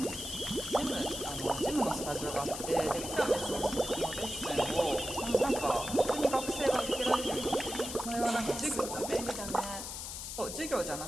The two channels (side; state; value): left; noise; hiss, 7 dB below the sound